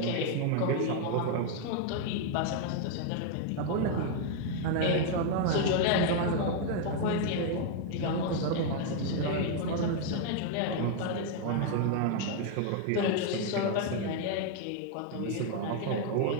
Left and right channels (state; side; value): different; both; correlation 0.00